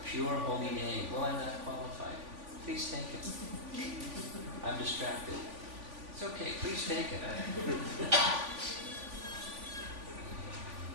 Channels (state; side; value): late; left; 3.5 ms